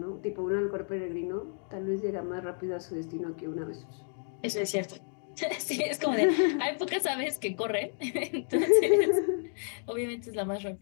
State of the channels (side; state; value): right; silent; 57 dB below the other